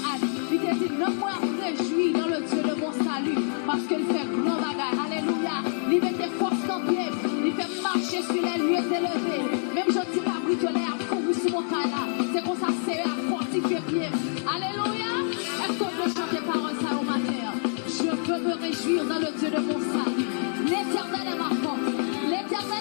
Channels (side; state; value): right; silent; 60 dB below the other